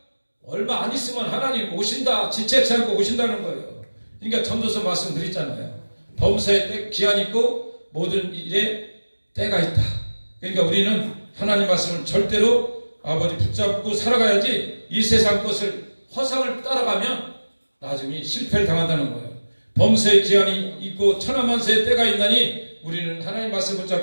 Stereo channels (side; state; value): both; inverted; correlation -1.00